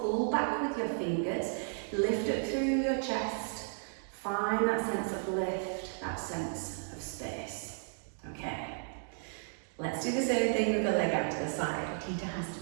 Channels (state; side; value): silent; left; digital silence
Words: pull back with your fingers, lift it through your chest, find that sense of lift, that sense of space, okay? Let's do the same thing with the leg out to the side,